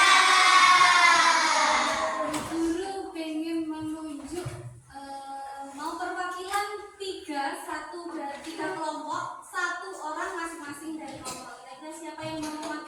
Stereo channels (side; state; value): both; identical; correlation 1.00